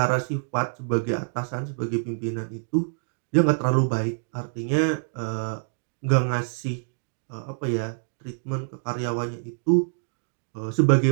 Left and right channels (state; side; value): silent; left; digital silence